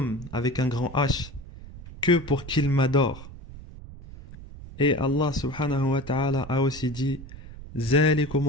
avec un grand H que pour qu'ils m'adorent. Et Allah subhanahu wa ta'ala a aussi dit ذَلِكُمُ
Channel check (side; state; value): right; noise; rumble, 15 dB below the sound